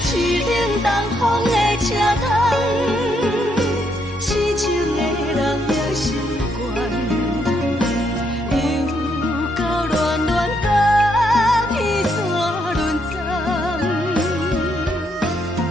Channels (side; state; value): both; normal; correlation 0.75